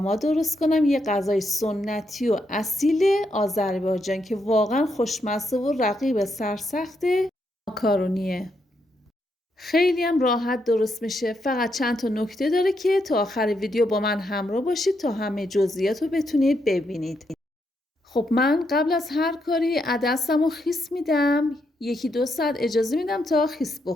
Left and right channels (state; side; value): normal; both; correlation 0.80